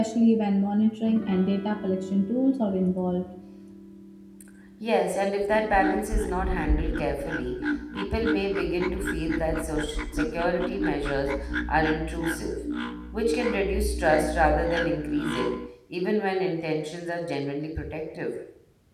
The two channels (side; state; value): both; identical; correlation 1.00